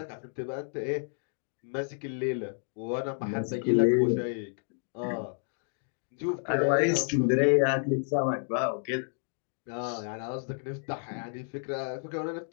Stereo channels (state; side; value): silent; right; 57 dB below the other